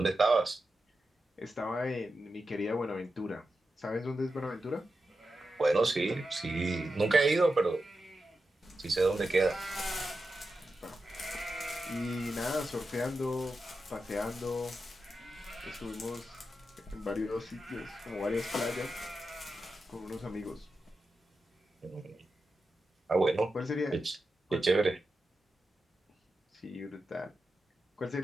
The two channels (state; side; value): normal; both; correlation 0.90